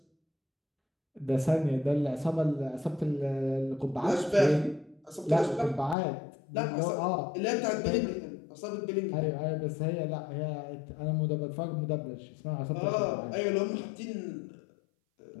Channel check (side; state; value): right; drops out; at 6.0 s